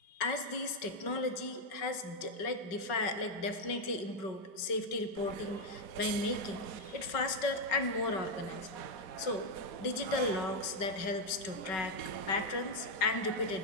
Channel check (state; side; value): late; right; 5.3 ms